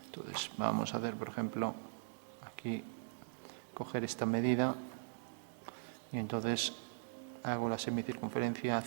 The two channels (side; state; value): left; silent; digital silence